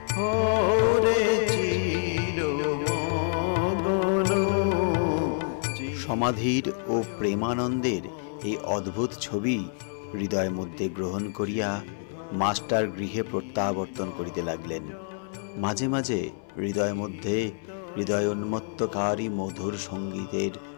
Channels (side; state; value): right; silent; 59 dB below the other